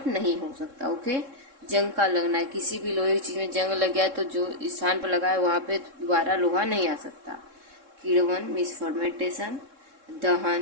नहीं हो सकता। ओके, जंग का लगना, किसी भी लोहे की चीज़ में जंग लग गया तो जो स्थान पर लगा है वहाँ पे दोबारा लोहा नहीं आ सकता। किण्वन मीन्स फर्मेंटेशन,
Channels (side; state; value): left; late; 3.7 ms